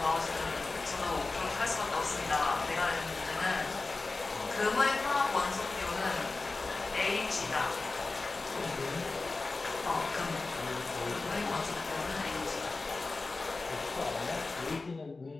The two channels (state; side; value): quieter; right; 3.6 dB